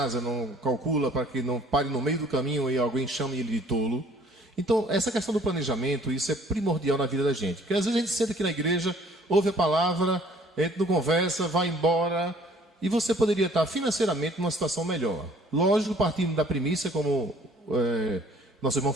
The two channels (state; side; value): normal; both; correlation 0.57